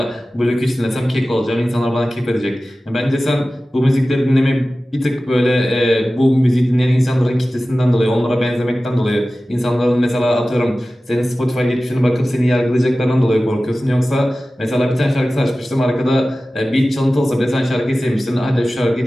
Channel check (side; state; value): both; normal; correlation 0.96